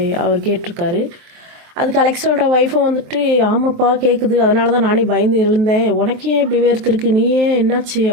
அவர் கேட்டிருக்காரு. அதுக்கு அலெக்ஸோட ஒய்ஃபும் வந்துட்டு ஆமாப்பா கேட்குது, அதனால தான் நானே பயந்து எழுந்தேன், உனக்கு ஏன் இப்படி வேர்த்துருக்கு, நீ ஏன் என்னாச்சு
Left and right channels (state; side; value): late; left; 23 ms